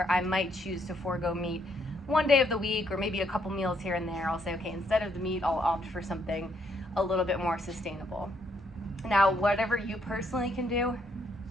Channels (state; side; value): normal; both; correlation 0.72